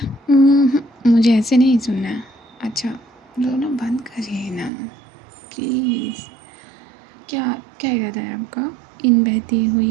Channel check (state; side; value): drops out; left; at 4.7 s